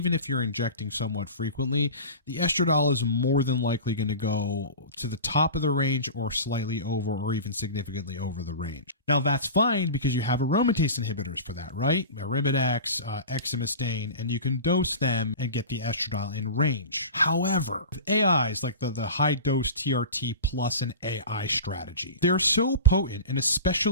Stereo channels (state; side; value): inverted; both; correlation -0.33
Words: if you're injecting somewhat frequently, the estradiol is more than likely going to go to the top of the range or slightly over or even significantly over the range. Now, that's fine because you have aromatase inhibitors for that, right? Arimidex, exemestane, and you can dose them and get the estradiol in range. However, with AIs like the high-dose TRT plus an AI strategy, they're so potent, and